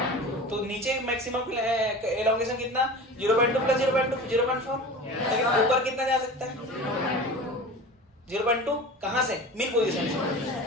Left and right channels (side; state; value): both; normal; correlation 0.34